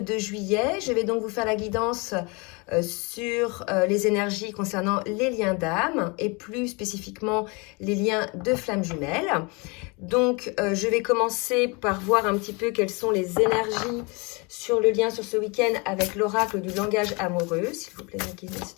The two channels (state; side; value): quieter; right; 29.2 dB